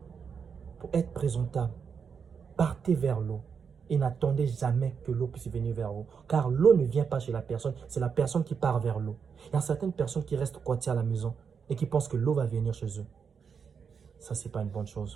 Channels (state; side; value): quieter; left; 6.4 dB